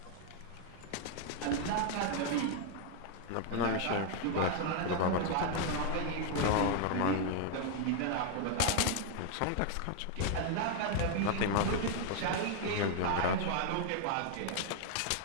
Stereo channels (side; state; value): both; different; correlation 0.00